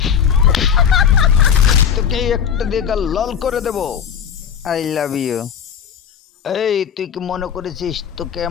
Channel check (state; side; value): quieter; right; 7.9 dB